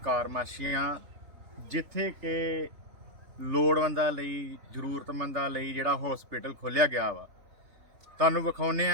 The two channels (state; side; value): late; left; 3.5 ms